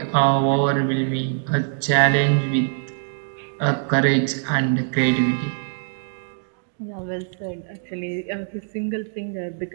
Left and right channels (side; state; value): left; silent; digital silence